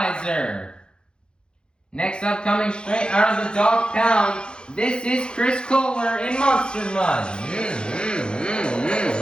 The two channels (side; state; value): right; late; 0.050 ms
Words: Next up, coming straight out of the dog pound, this is Chris Kohler in Monster Mud.